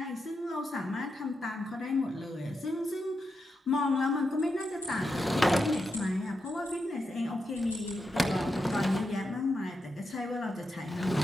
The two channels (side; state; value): both; normal; correlation 0.86